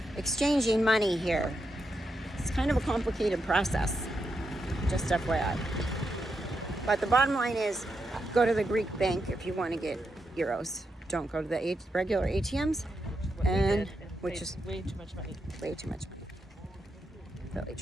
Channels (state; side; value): normal; both; correlation 0.84